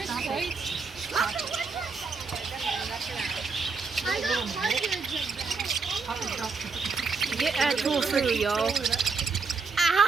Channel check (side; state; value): left; quieter; 4.6 dB